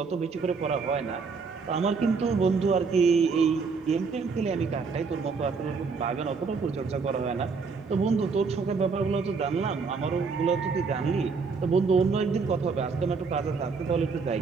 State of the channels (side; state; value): left; quieter; 4.9 dB